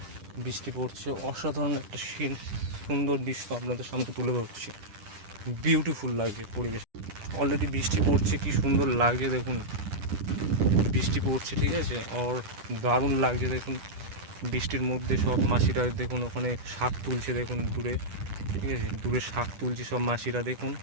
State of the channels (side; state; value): left; late; 10 ms